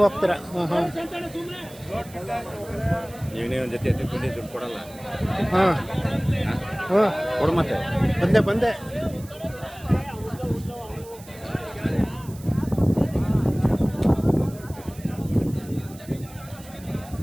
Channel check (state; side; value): noise; right; hiss, 20 dB below the sound